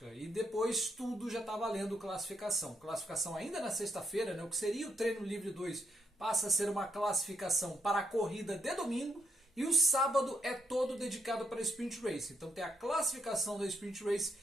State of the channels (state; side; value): normal; both; correlation 0.78